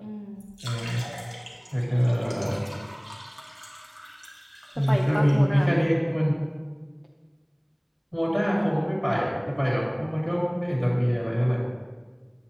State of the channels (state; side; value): identical; both; correlation 1.00